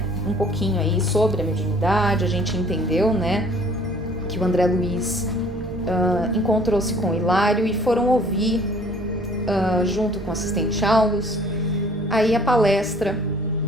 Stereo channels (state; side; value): normal; both; correlation 0.55